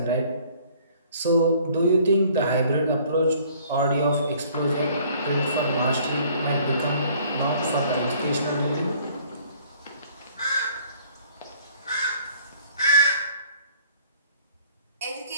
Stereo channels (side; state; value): both; inverted; correlation -0.57